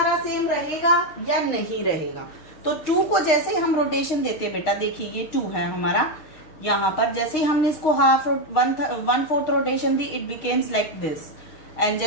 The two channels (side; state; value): right; late; 6.4 ms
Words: सेम रहेगा या नहीं रहेगा? तो 2 को जैसे ही हम रोटेशन देते हैं बेटा, देखिए ये 2 है हमारा. यहाँ पर जैसे ही हमने इसको 1/4 rotation the, it becomes like this. And